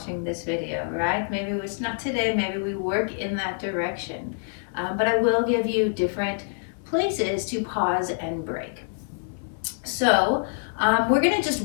this video, right? Maybe it's not today, maybe we work in that direction. But I will give you different places to pause and break. So we're gonna just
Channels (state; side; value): silent; right; 61 dB below the other